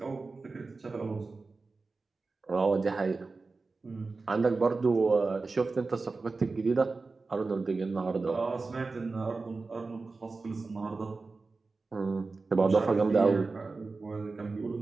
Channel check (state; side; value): quieter; left; 3.9 dB